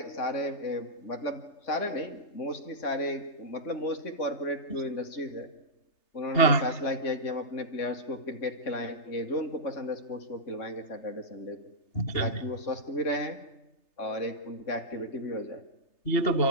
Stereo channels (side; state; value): right; late; 3.3 ms